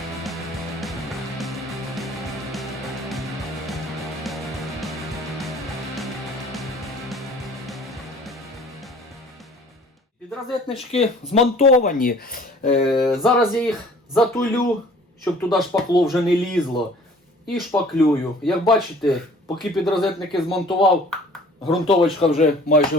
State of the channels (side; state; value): both; normal; correlation 0.51